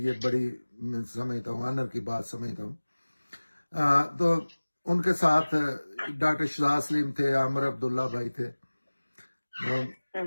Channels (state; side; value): inverted; both; correlation -1.00